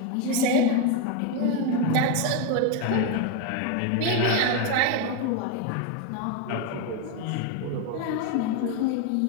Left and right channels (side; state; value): both; different; correlation 0.02